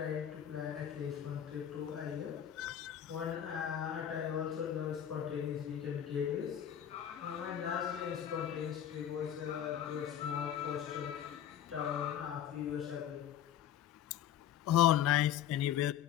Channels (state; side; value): quieter; right; 10.2 dB